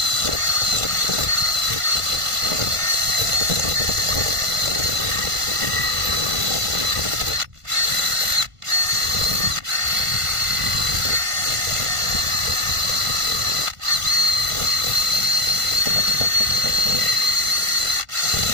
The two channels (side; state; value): left; late; 1.5 ms